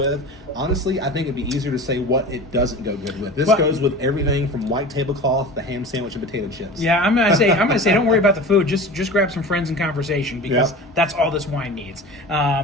Honestly, I think it'd be easier to say what it doesn't go good with. This goes with everything from white tablecloth to ham sandwich and potato chips. Yeah, I'm gonna say, don't worry about the food. Just grab some friends and conversation, because that's all this wine needs.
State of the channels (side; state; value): both; normal; correlation 0.35